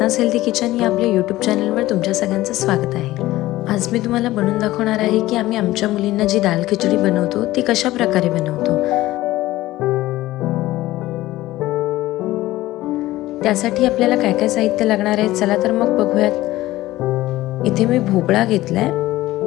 healthy kitchen या आपल्या YouTube चॅनलवर तुमच्या सगळ्यांचं स्वागत आहे। आज मी तुम्हाला बनवून दाखवणार आहे की आम्ही आमच्या मुलींना जी दाल खिचडी बनवतो ती कशा प्रकारे बनवतो। त्यासाठी आपल्याला काय काय साहित्य लागणार आहे चला तर मग बघूयात। इथे मी भोपळा घेतलाय,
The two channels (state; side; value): quieter; right; 16.7 dB